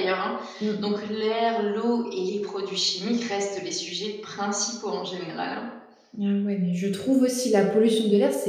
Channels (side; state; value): both; identical; correlation 1.00